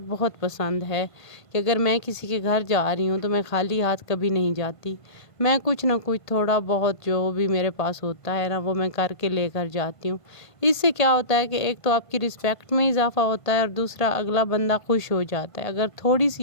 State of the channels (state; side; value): late; right; 1.5 ms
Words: بہت پسند ہے کہ اگر میں کسی کے گھر جا رہی ہوں تو میں خالی ہاتھ کبھی نہیں جاتی، میں کچھ نہ کچھ تھوڑا بہت جو بھی میرے پاس ہوتا ہے وہ میں کر کے لے کر جاتی ہوں۔ اس سے کیا ہوتا ہے کہ ایک تو آپ کی رسپیکٹ میں اضافہ ہوتا ہے اور دوسرا اگلا بندہ خوش ہو جاتا ہے۔ اگر تھوڑی